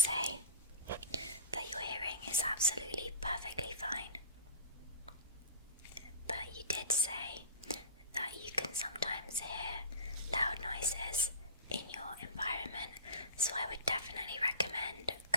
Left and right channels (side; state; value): both; inverted; correlation -0.32